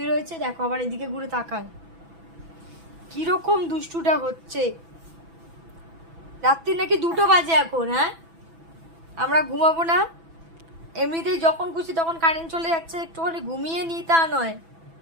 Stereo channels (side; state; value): left; late; 6.0 ms